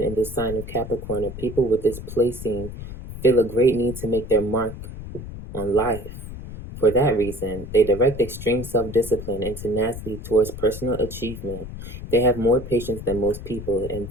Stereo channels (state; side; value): noise; left; rumble, 10 dB below the sound